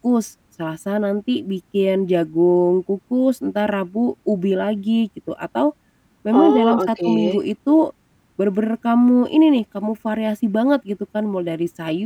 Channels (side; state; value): both; identical; correlation 1.00